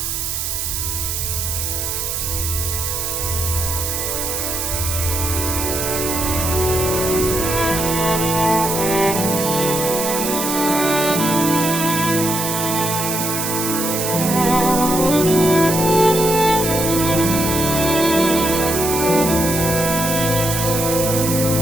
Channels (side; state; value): right; noise; hiss, 2 dB below the sound